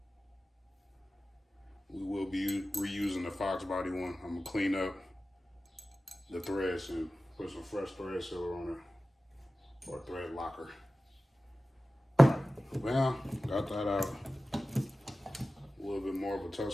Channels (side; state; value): both; normal; correlation 0.95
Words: We will be reusing the Foxbody one. I'm gonna clean up the threads and put some fresh thread sealer on it, or thread locker. Well, got that out. A little bit more of a